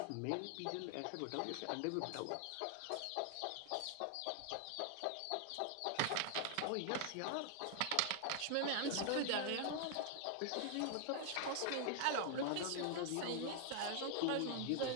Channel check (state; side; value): different; both; correlation 0.00